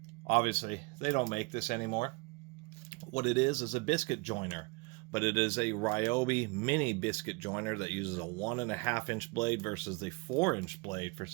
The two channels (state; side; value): quieter; left; 28.2 dB